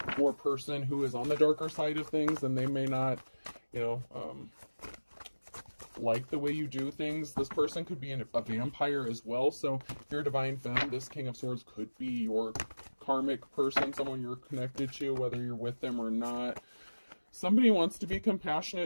or person who is on the darker side of things, and they may not, like the way you do things. This person could be a vampire as well. So if you're a divine femme, this King of Swords could be your karmic person, someone you're connected to, whether you're with them or not. Somebody wants to be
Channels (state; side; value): inverted; both; correlation -1.00